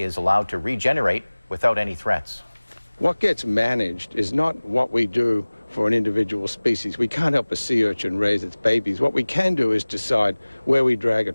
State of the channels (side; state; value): both; inverted; correlation -1.00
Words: allowed to regenerate without any threats. What gets managed is not what we do for an individual species. We can't help a sea urchin raise its babies. What we can do is decide where we drag a